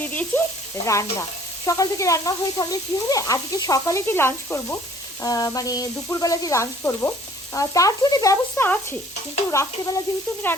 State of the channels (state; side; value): normal; both; correlation 0.56